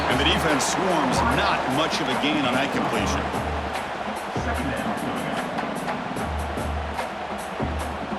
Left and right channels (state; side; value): identical; both; correlation 1.00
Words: And the defense swarms. Not much of a gain on that completion.